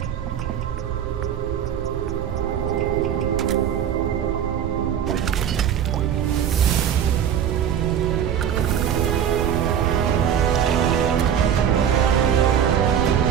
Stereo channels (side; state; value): left; quieter; 9.1 dB